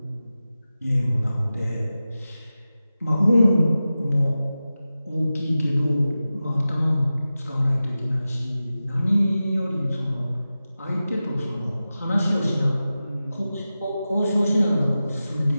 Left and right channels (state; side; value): inverted; both; correlation -0.94